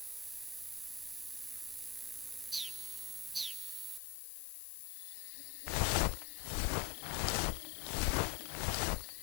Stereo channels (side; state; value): right; drops out; at 4.0 s